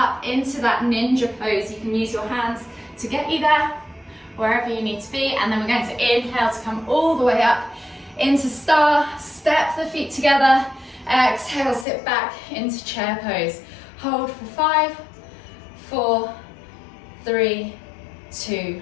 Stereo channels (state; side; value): drops out; right; at 11.9 s